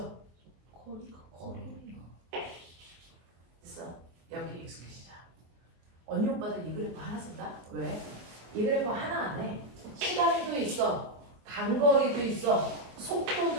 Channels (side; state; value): left; late; 24 ms